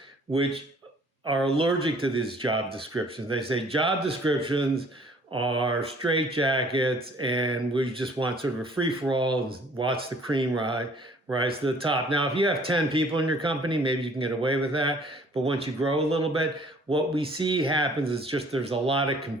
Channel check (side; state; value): both; normal; correlation 0.56